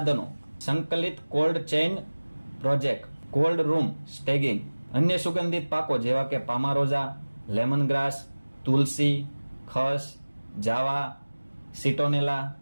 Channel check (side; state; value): both; inverted; correlation -1.00